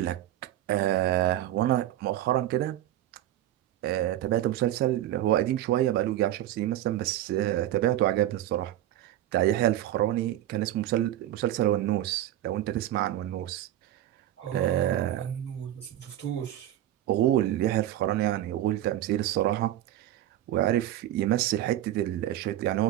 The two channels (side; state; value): left; quieter; 13.2 dB